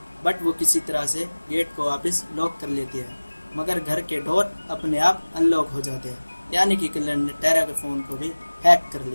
बट वो किसी तरह से गेट को वापस लॉक कर लेती है, मगर घर के डोर अपने आप अनलॉक हो जाते हैं, यानी कि किलर ने टेरा के फ़ोन को भी हैक कर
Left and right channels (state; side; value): inverted; both; correlation -1.00